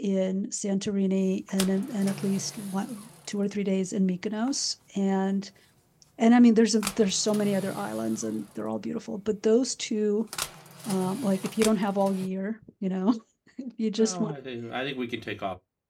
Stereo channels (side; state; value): both; identical; correlation 1.00